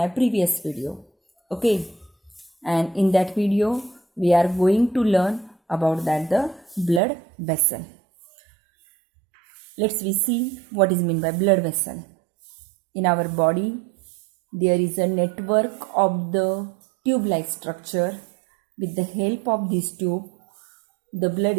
previous video. Okay, and in that video we are going to learn about that the blood vessel. Let's we see what is meant by blood vessel. In our body there is a network of the tube-like structure. With the help of this tube, the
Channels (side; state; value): left; drops out; at 7.0 s